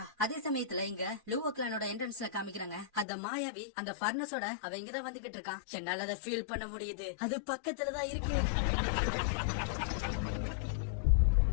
அதே சமயத்துல இங்க லூவோ கிளானோட என்ட்ரன்ஸ்ல காமிக்கிறாங்க. அந்த மாயாவி அந்த ஃபர்னஸோட அவ இங்கதான் வந்துகிட்டு இருக்கான். என்னால அதை ஃபீல் பண்ண முடியுது. அது பக்கத்துலதான் இருக்கு.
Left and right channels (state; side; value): drops out; right; at 3.1 s